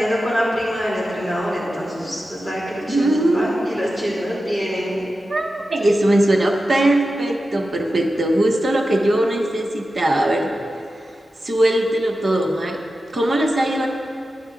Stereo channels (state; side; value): normal; both; correlation 0.92